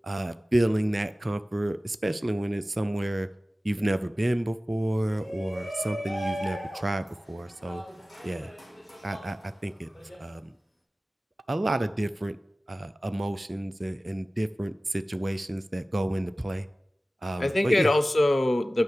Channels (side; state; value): both; normal; correlation 0.97